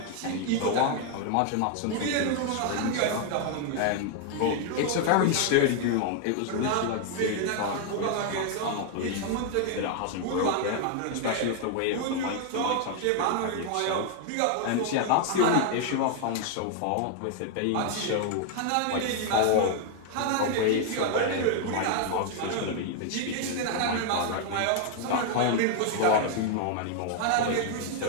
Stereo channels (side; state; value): both; different; correlation 0.00